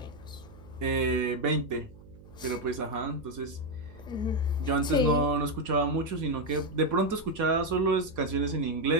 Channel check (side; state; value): right; noise; hum, 20 dB below the sound